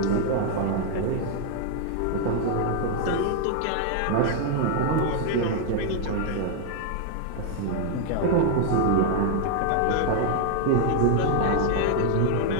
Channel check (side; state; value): both; different; correlation 0.00